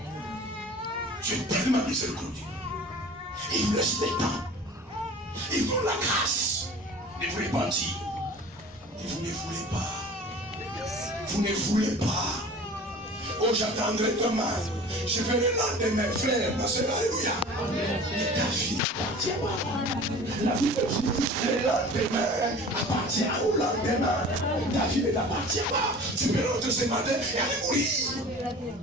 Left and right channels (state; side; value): normal; both; correlation 0.42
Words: Dieu est tellement miséricordieux. Il vous laisse le temps. Il vous donne la grâce de vous repentir. Et vous ne voulez pas. Vous ne voulez pas. Oh, j'attendrai demain. Je vais le lendemain, frère, ma soeur, alléluia. Et ta vie appartient pas. La vie de Dieu, le lendemain appartient au lendemain. Ta vie ne t'appartient pas. Tu peux rentrer ce matin et aller mourir.